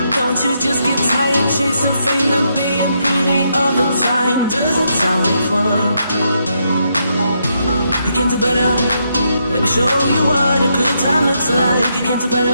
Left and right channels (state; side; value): inverted; both; correlation -0.79